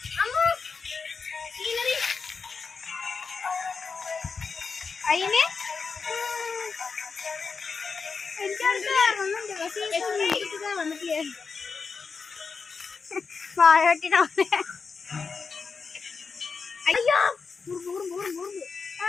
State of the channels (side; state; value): right; quieter; 5.1 dB